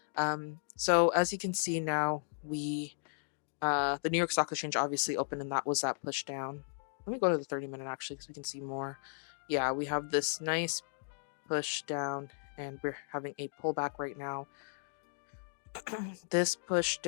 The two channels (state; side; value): silent; right; digital silence